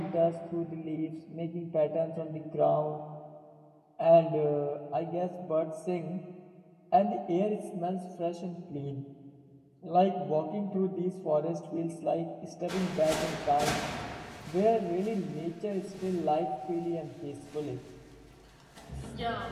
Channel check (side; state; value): both; identical; correlation 1.00